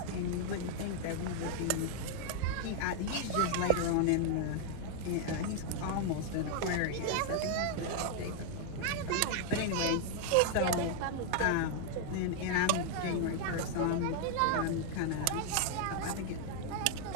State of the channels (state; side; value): different; both; correlation 0.00